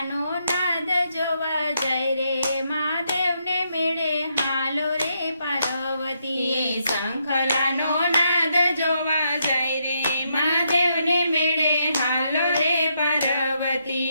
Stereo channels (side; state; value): both; inverted; correlation -0.78